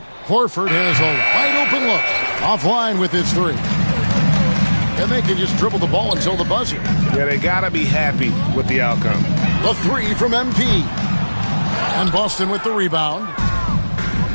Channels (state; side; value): inverted; both; correlation -1.00